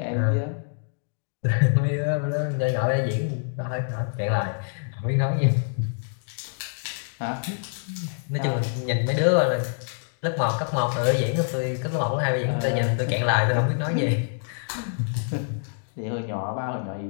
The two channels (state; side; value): silent; right; digital silence